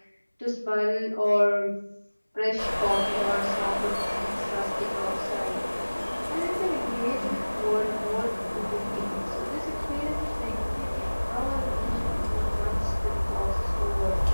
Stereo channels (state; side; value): inverted; both; correlation -1.00